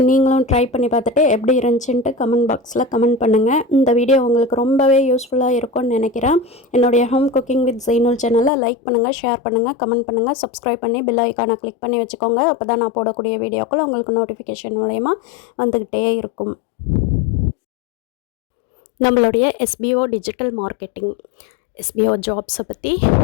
ட்ரை பண்ணி பார்த்துட்டு எப்படி இருந்துச்சுன்ட்டு கமெண்ட் பாக்ஸில் கமெண்ட் பண்ணுங்கள். இந்த வீடியோ உங்களுக்கு ரொம்பவே யூஸ்ஃபுல்லாக இருக்கும்னு நினைக்கிறேன். என்னுடைய ஹோம் குக்கிங் வித் ஜெய்னுல் சேனலை லைக் பண்ணுங்கள், ஷேர் பண்ணுங்கள், கமெண்ட் பண்ணுங்கள், சப்ஸ்கிரைப் பண்ணி பெல் ஐக்கானை கிளிக் பண்ணி வச்சுக்கோங்க. அப்போ தான் நான் போடக்கூடிய வீடியோக்கள் உங்களுக்கு நோட்டிஃபிகேஷன் மூலயமா வந்துக்கிட்டே இருக்கும். நம்மளுடைய SBO டிஜிட்டல் மார்க்கெட்டிங், SBO ஜாப்ஸை பற்றி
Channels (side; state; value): right; drops out; at 8.5 s